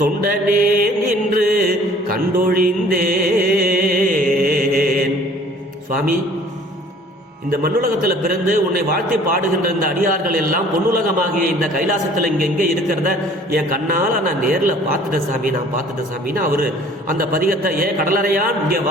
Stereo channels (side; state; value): both; normal; correlation 0.52